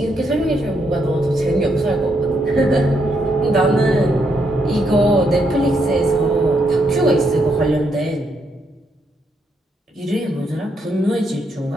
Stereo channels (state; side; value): normal; both; correlation 0.77